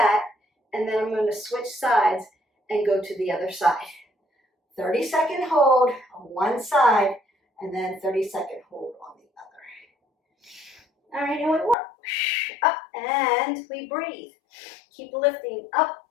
and then I'm going to switch sides and go to the other side. 30-second hold on one side and then 30-second hold on the other. All right, and we work. Up, and we breathe. Keep lifting up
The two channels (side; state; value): right; drops out; at 11.8 s